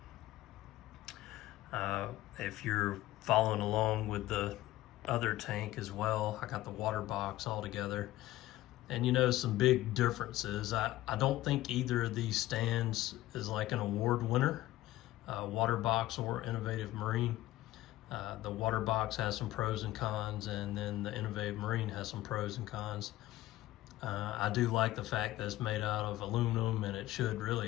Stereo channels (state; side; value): quieter; right; 15.7 dB